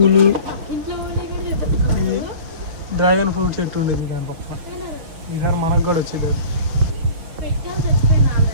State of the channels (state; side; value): late; left; 6.5 ms